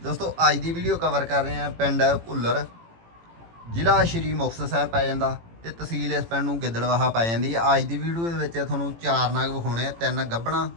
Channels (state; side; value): late; left; 18 ms